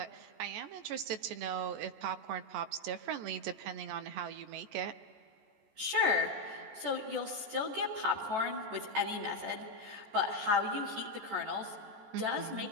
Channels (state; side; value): late; left; 14 ms